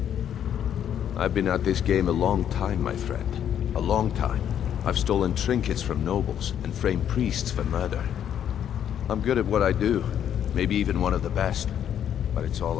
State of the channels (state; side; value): quieter; right; 9.6 dB